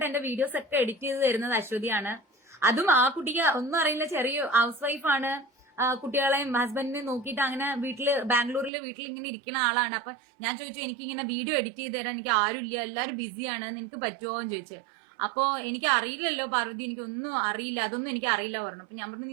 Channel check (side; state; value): left; drops out; at 8.7 s